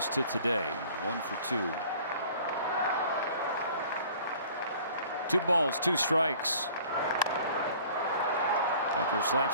to today. 1 for 2. 2 balls, 2 strikes. Tucker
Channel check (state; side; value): inverted; both; correlation -0.50